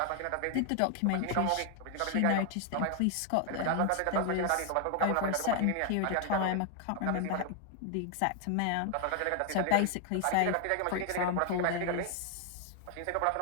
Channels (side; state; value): both; different; correlation 0.00